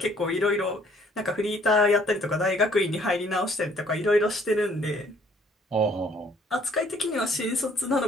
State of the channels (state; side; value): normal; both; correlation 0.61